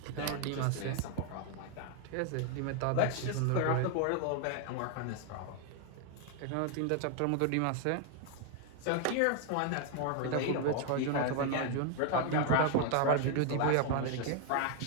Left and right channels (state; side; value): different; both; correlation 0.00